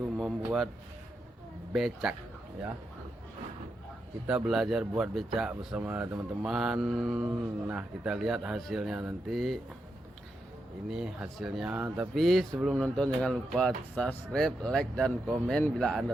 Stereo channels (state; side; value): normal; both; correlation 0.85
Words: membuat becak ya. Kita belajar buat becak bersama teman-teman. Nah, kita lihat hasilnya nanti. Ini hasilnya. Tapi sebelum nonton jangan lupa subscribe, like dan komen bila